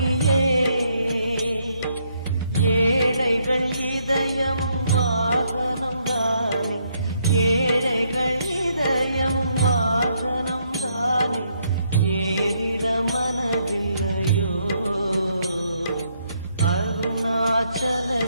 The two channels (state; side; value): inverted; both; correlation -0.73